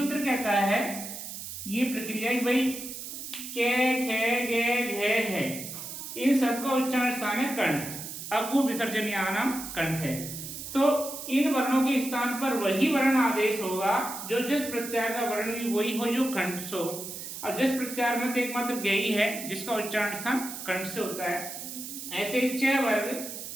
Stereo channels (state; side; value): noise; right; hiss, 9 dB below the sound